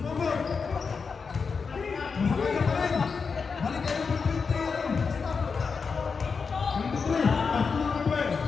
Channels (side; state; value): right; quieter; 5.3 dB